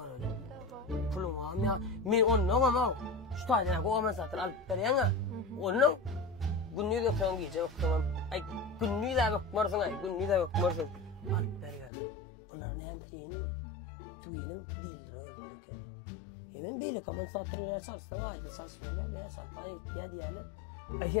öyle. Pulum var ya. Men ondan ama şu taýdan go aman satır alyp berýän. Onun günnüz ökken giýje ökkenam. Ay günnüz de ökmersiň ay, günnüz de ökmersiň. Alyp berýär. Bunlar näme diýeni? Tuýenim dildir öldürken. Hemen beýle aman satyrlar salsaň aýdy salsaňlar ne salpay diýýärler. Ay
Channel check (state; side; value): drops out; right; at 11.9 s